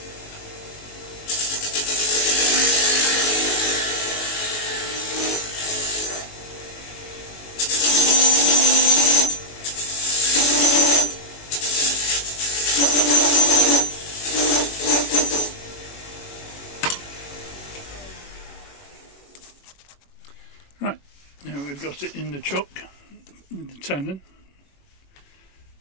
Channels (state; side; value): late; right; 21 ms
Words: Right, now we've got it in the chuck with the tenon.